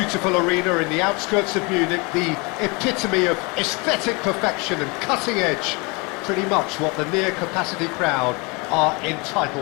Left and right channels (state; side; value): quieter; right; 28.8 dB